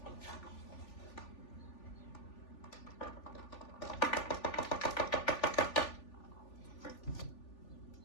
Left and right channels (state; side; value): late; right; 3.4 ms